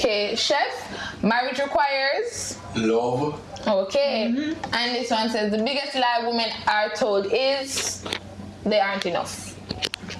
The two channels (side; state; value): both; identical; correlation 1.00